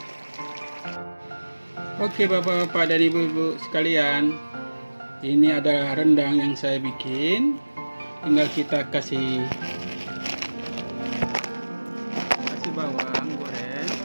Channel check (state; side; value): inverted; both; correlation -1.00